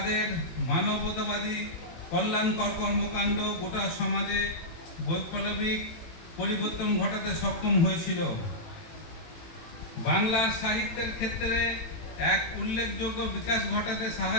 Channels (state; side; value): late; right; 18 ms